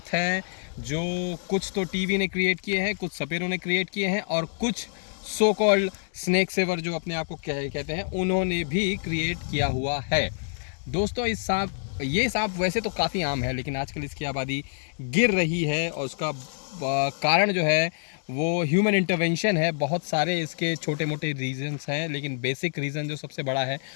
हैं जो कुछ तो टीवी ने क्रिएट किए हैं, कुछ सपेरों ने क्रिएट किए हैं और कुछ सो कॉल्ड स्नेक सेवर जो अपने आप को कहते हैं उन्होंने भी क्रिएट किया हुआ है। दोस्तों ये सांप वैसे तो काफ़ी आम है, लेकिन आजकल इसकी आबादी गिर रही है और उसका कारण जो है वो ह्यूमन इंटरवेंशन है। बहुत सारे इसके छोटे मोटे रीजंस हैं, लेकिन बेसिक रीज़न जो सबसे बड़ा है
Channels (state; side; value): silent; right; digital silence